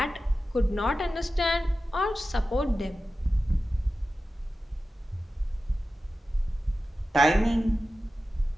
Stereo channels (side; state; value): both; normal; correlation 0.94